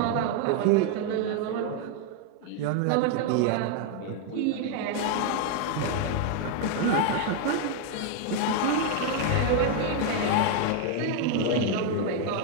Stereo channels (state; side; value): different; both; correlation 0.01